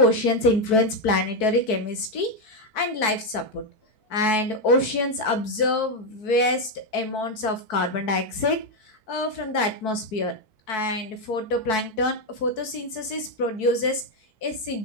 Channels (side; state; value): right; late; 4.6 ms